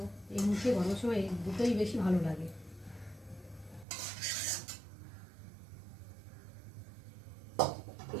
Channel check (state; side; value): drops out; left; at 3.9 s